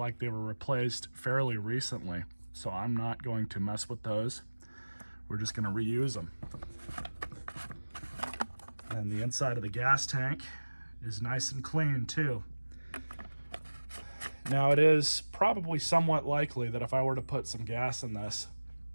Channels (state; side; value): inverted; both; correlation -1.00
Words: they were replaced fairly recently. So I'm not going to mess with those. We're just going to reuse them. And the inside of the gas tank is nice and clean too. Now it is probably somewhat likely that if I were to put some gas in this